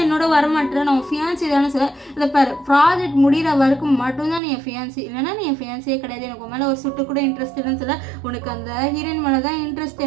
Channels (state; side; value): drops out; left; at 4.4 s